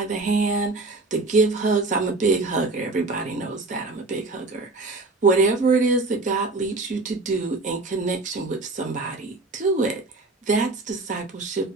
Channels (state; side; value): quieter; left; 3.3 dB